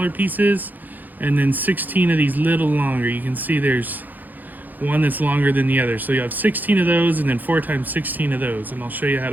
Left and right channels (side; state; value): left; late; 0.084 ms